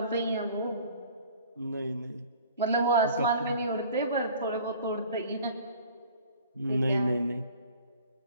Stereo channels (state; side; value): inverted; both; correlation -0.48